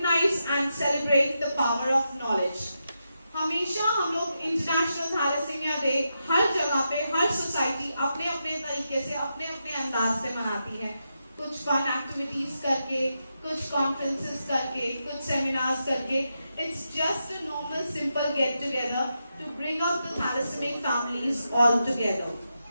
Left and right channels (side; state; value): both; inverted; correlation -0.86